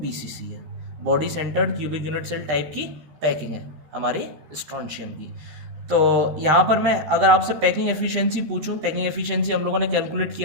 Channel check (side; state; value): left; late; 13 ms